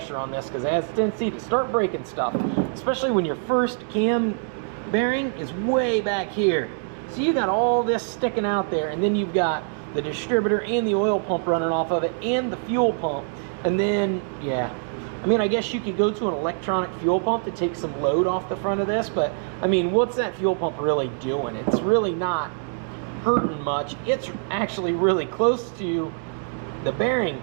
on this because it has a tendency to start breaking stuff, especially when your first cam bearing is way back here. So you got all this sticking out there, and then you've got the distributor and the oil pump running off of it, and the fuel pump. And then, yeah, I mean, I guess you could go to an electronic fuel pump to take some load off the front of this, but I mean, what's that fuel pump really doing? It's really not hurting much. It's actually really close to the bearing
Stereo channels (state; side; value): silent; left; 62 dB below the other